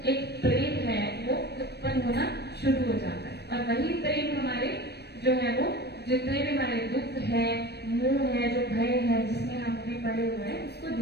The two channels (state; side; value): late; right; 0.48 ms